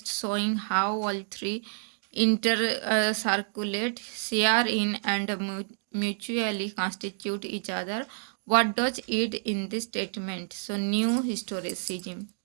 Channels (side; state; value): left; silent; digital silence